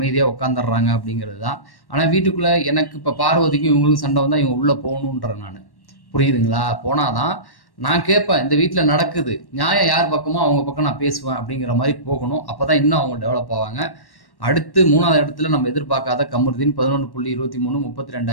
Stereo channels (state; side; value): late; right; 1.1 ms